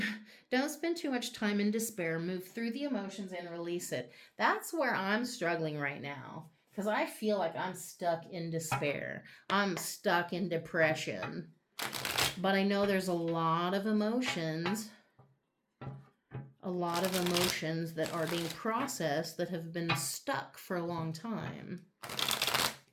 spend too much time in despair. Move through the emotions and release it. That's where I'm struggling right now, because I feel like I'm stuck in despair. I'm stuck in depression. But I know there's a lot of emotions that are being processed that have been stuck for a long time.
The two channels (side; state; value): both; identical; correlation 1.00